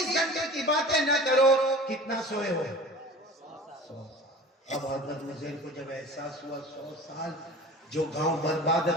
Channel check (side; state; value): both; normal; correlation 0.40